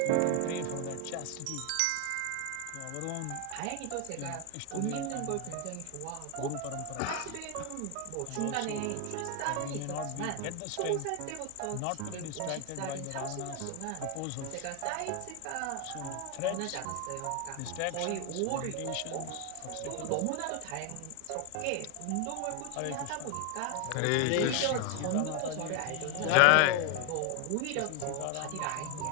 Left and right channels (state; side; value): different; both; correlation 0.01